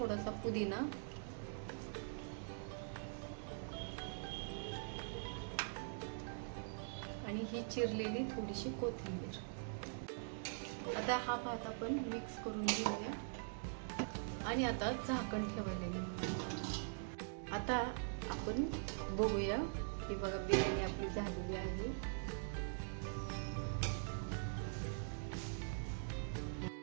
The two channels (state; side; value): silent; left; digital silence